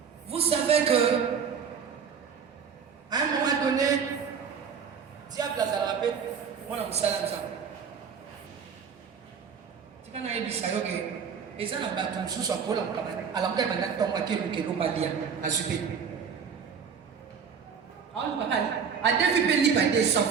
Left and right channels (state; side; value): quieter; left; 6.6 dB